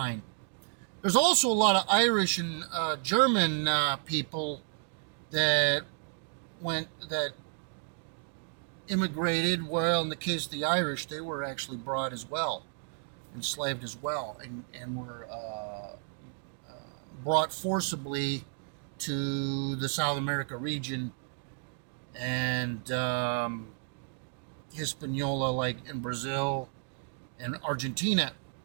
There's also a lot of Irish and German people that immigrated. Well, in the case of the Irish, they were actually brought as well, enslaved as well, and were brought forcibly to the South America region and Hispaniola, like in Brazil and Argentina.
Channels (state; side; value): silent; left; 56 dB below the other